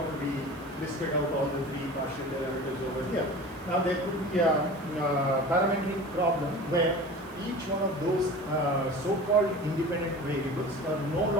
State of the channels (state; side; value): noise; right; hiss, 26 dB below the sound